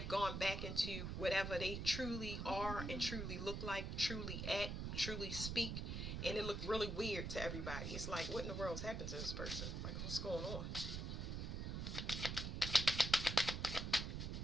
gone back into whatever they truly are and truly look like, truly act, truly speak. And it looked really weird to everybody. It's like, what in the world's happened to this person? Like, what's going on?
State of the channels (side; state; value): right; noise; rumble, 3 dB below the sound